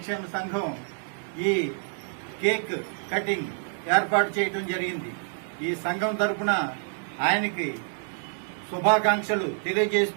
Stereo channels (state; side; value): silent; left; 60 dB below the other